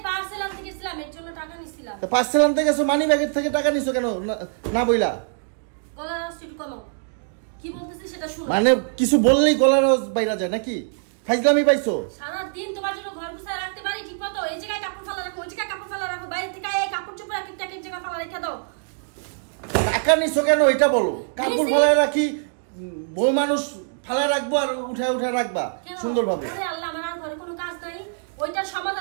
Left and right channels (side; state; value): left; silent; digital silence